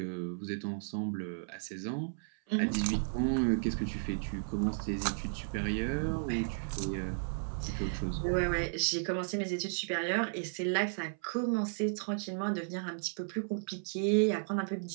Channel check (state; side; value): silent; left; 55 dB below the other